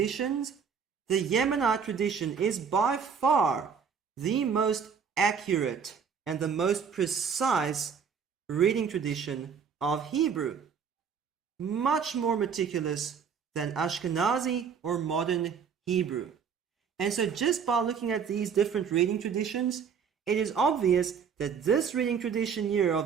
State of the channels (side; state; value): left; quieter; 6.7 dB